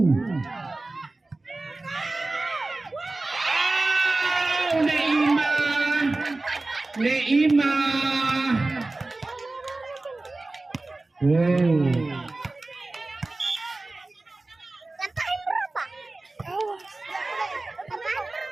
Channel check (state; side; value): quieter; left; 3.1 dB